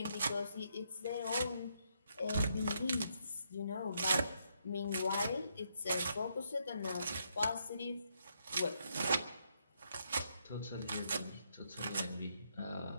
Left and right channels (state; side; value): inverted; both; correlation -0.76